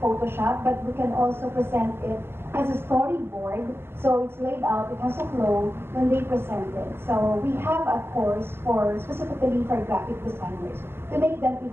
but we can also present it as a storyboard. So it's laid out, it has a flow when they present it. So we have a course specifically for graphic designers to make them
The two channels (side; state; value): left; late; 0.11 ms